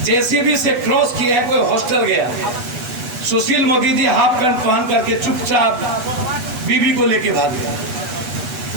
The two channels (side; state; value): left; late; 8.2 ms